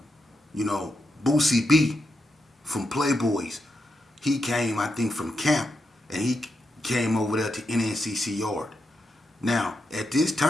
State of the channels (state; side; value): normal; both; correlation 0.84